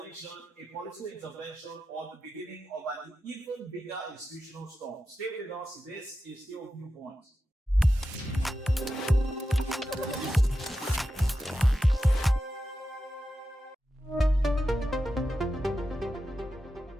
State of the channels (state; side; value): normal; both; correlation 0.91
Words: a political intervention, or the beginning of an even bigger institutional storm? Stay with us. This is still Viewpoint.